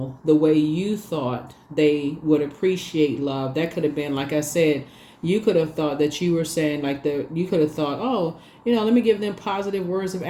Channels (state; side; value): identical; both; correlation 1.00